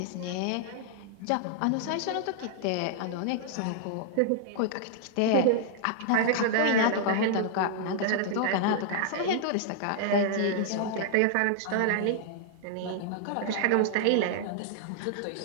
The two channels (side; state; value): both; different; correlation -0.01